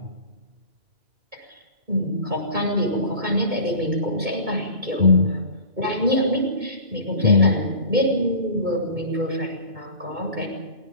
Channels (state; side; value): late; left; 2.2 ms